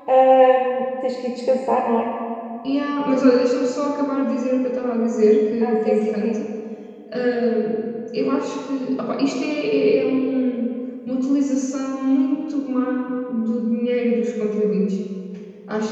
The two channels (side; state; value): both; identical; correlation 1.00